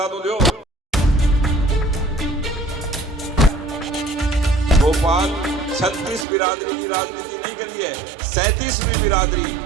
तो दो। भोपाल 36 बिरादरी की राजनीति नहीं करी है, 37वीं बिरादरी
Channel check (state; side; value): drops out; left; at 6.2 s